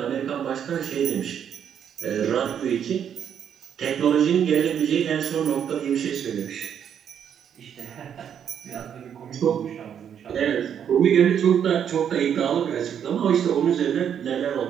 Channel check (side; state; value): left; quieter; 8.6 dB